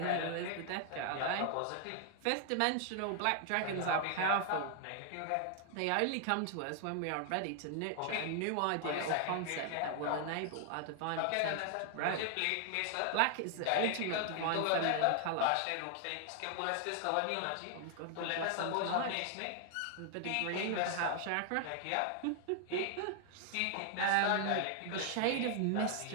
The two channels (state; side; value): different; both; correlation 0.00